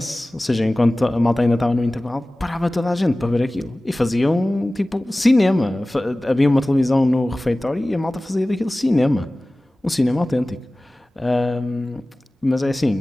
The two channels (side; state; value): both; normal; correlation 0.98